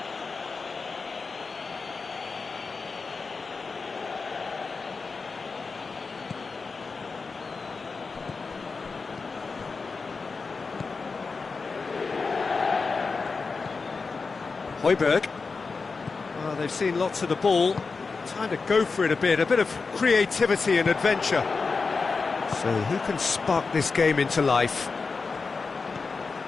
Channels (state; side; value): quieter; right; 4.5 dB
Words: Højbjerg. Well, they've seen lots of the ball. Time to go for it a bit of creativity and adventure. So who can spark this game into life?